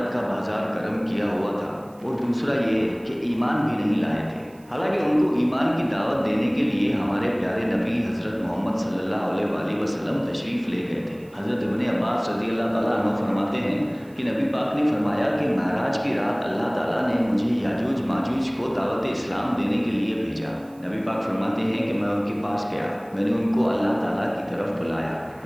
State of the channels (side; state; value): right; noise; hiss, 29 dB below the sound